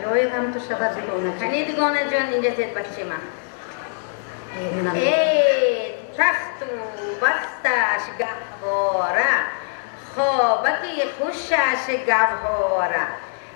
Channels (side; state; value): right; silent; digital silence